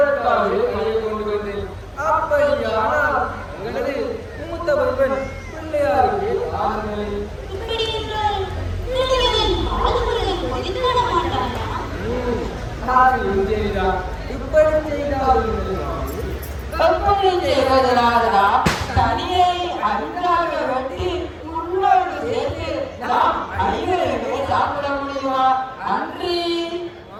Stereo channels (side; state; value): both; identical; correlation 1.00